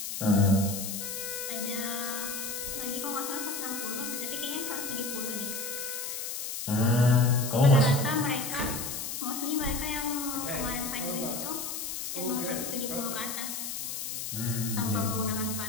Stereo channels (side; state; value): left; noise; hiss, 5 dB below the sound